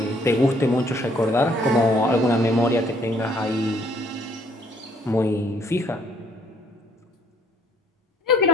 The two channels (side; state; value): both; normal; correlation 0.64